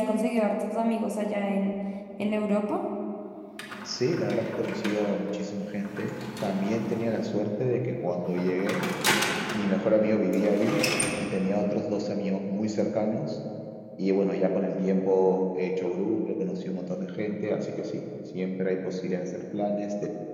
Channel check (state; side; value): identical; both; correlation 1.00